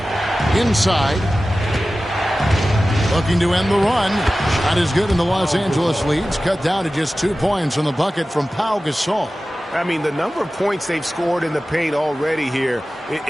Inside. Looking to end the run. Shot is good, and the Los Angeles leads cut down to just 2 points on the bucket from Pau Gasol. I mean, the number of points they've scored in the paint already here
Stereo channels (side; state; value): both; normal; correlation 0.95